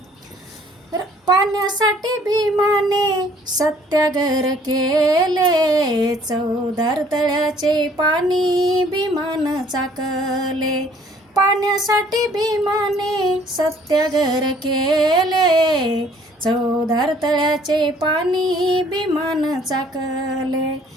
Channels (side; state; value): both; normal; correlation 0.59